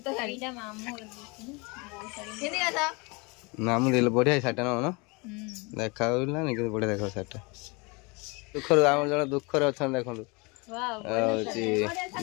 मामू दे बढ़िया साटा ना देखा बढ़िया देख साटा दुखर आम जन दुखर अच्छा देखो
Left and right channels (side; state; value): right; quieter; 28.2 dB